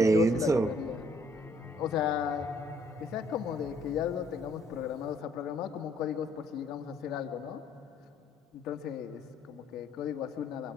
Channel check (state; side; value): normal; both; correlation 0.65